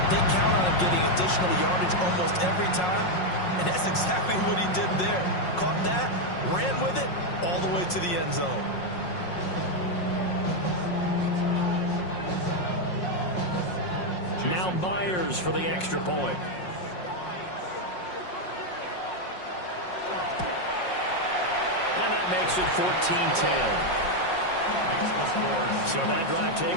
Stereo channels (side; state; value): right; late; 5.5 ms